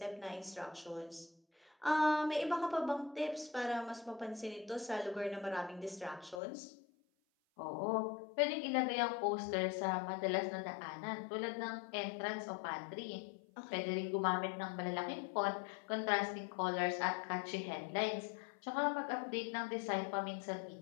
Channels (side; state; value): right; drops out; at 6.4 s